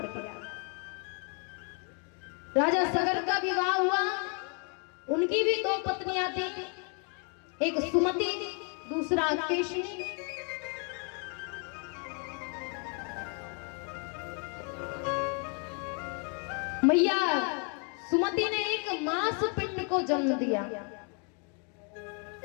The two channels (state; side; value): quieter; right; 38.0 dB